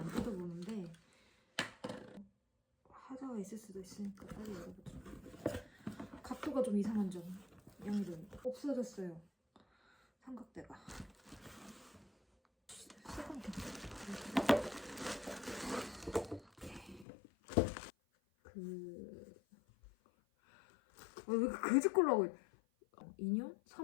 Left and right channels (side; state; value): right; drops out; at 17.1 s